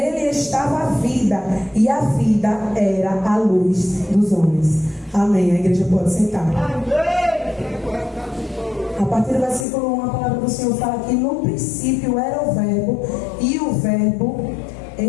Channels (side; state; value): right; drops out; at 9.7 s